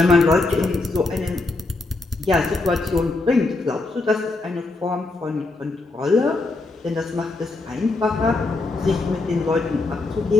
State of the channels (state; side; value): quieter; right; 3.3 dB